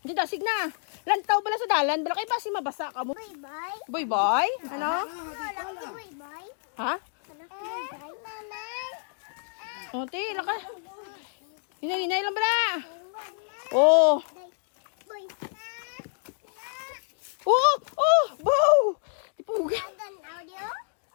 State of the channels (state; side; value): silent; right; digital silence